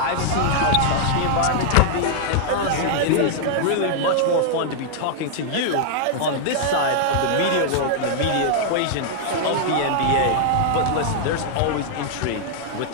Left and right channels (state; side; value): different; both; correlation -0.01